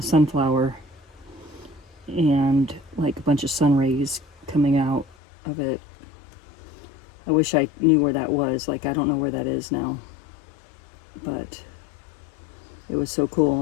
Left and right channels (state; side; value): drops out; right; at 5.2 s